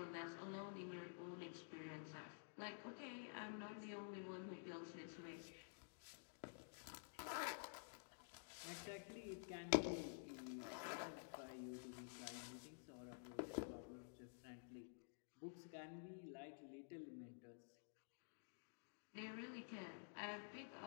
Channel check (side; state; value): right; silent; digital silence